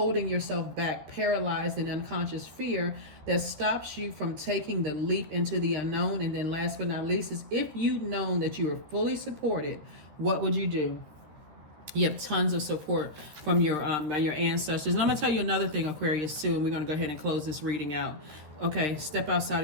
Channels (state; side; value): late; left; 13 ms